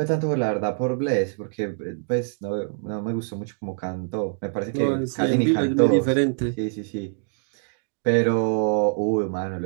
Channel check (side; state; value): left; silent; digital silence